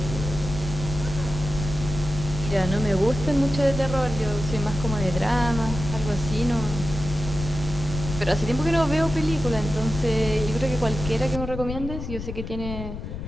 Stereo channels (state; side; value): noise; left; rumble, 7 dB below the sound